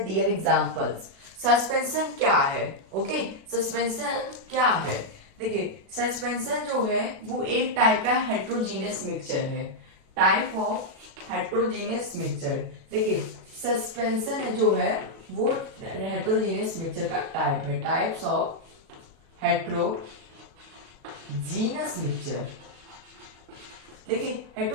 their examples. Suspension क्या है? ओके, सस्पेंशन क्या है? देखिए, सस्पेंशन जो है वो एक टाइप का हेट्रोजीनियस मिक्सचर है. Type of heterogeneous mixture. देखिए, सस्पेंशन जो है वो हेट्रोजीनियस मिक्सचर का टाइप है. Types of heterogeneous mixture. देखिए,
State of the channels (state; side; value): late; left; 36 ms